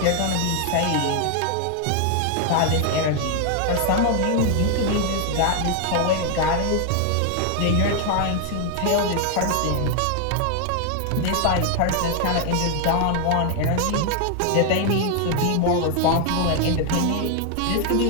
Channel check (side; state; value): both; different; correlation 0.00